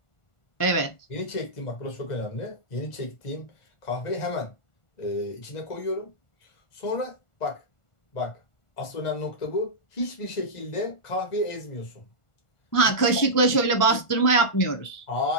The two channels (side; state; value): right; late; 1.4 ms